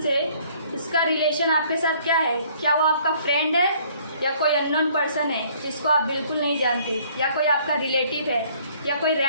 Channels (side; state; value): both; inverted; correlation -0.59